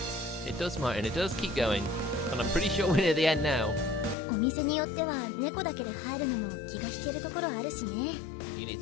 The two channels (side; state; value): right; drops out; at 4.2 s